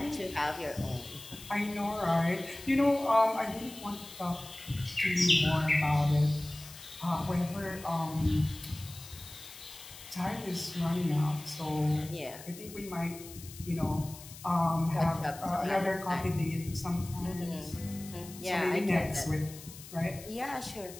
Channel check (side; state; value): left; noise; hiss, 16 dB below the sound